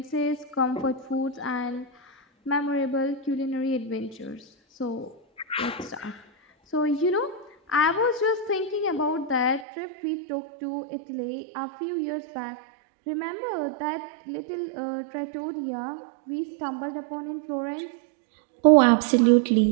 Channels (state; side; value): drops out; left; at 9.7 s